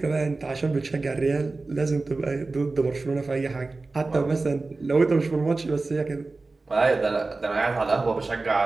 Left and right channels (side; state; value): left; quieter; 3.5 dB